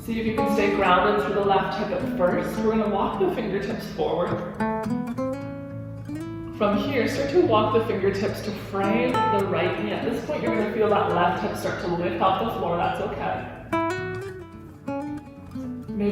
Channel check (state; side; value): identical; both; correlation 1.00